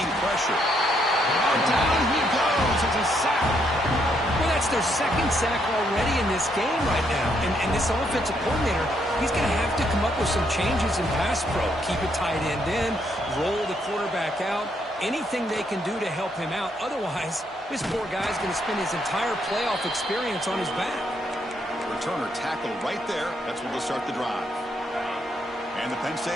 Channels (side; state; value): both; normal; correlation 0.74